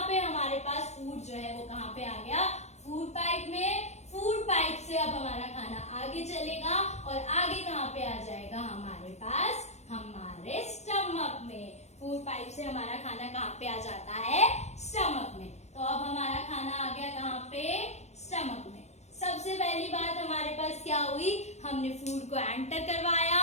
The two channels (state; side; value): late; right; 0.32 ms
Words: पे हमारे पास फूड जो है वो कहाँ पे आ गया, फूड पाइप में। फूड पाइप से अब हमारा खाना आगे चलेगा और आगे कहाँ पे आ जाएगा हमारे पास, हमारे स्टमक में। फूड पाइप से हमारा खाना कहाँ पे आ जाता है, स्टमक में। तो अब हमारा खाना आ गया कहाँ पे, स्टमक में। सबसे पहली बात हमारे पास क्या हुई, हमने फूड को एंटर